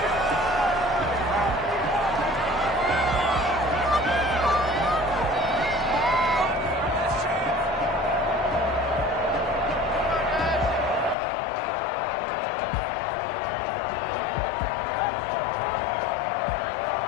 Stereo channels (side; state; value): right; drops out; at 11.2 s